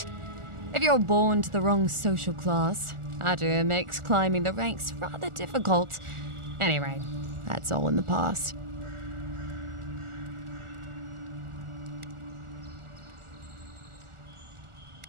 If you're born to the wrong social class, Adir makes climbing the ranks rather difficult. Anyway, that's all in the past.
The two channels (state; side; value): late; left; 1.4 ms